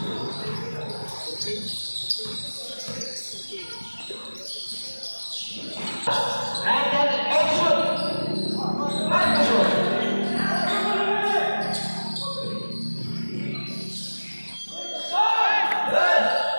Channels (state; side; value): inverted; both; correlation -1.00